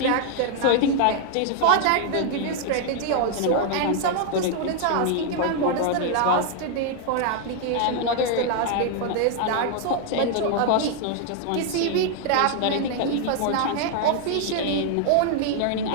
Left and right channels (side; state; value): both; different; correlation 0.00